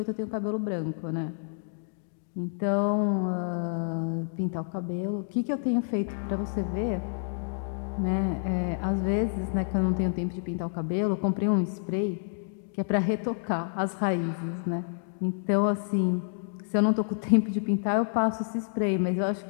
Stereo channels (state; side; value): silent; right; digital silence